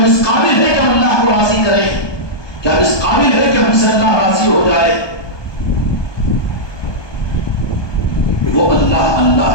اس قابل ہے کہ ہم اللہ کو راضی کریں، کہ ہم اس قابل ہے کہ ہم سے اللہ راضی ہو جائے. وہ اللہ اللہ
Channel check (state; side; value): late; right; 1.2 ms